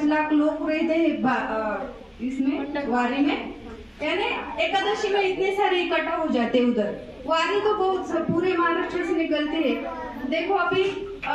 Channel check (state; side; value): identical; both; correlation 1.00